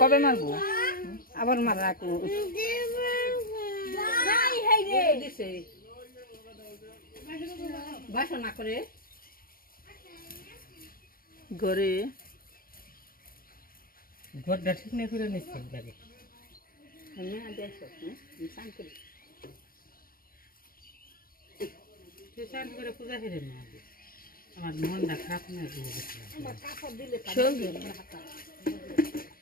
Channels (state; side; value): late; right; 0.42 ms